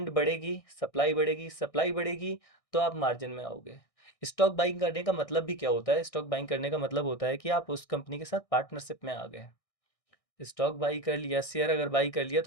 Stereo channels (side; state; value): right; late; 1.6 ms